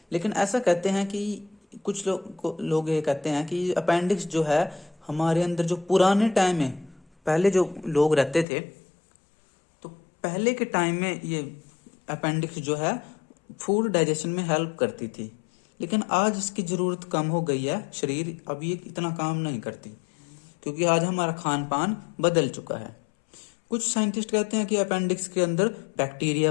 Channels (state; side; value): drops out; right; at 8.5 s